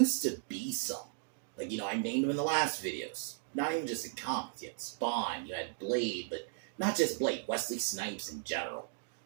to be some. Like, I named them in the last videos. Not even just in comics. You had Spawn, you had Blade, but not just Blade, Wesley Snipes in general.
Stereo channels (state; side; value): silent; left; digital silence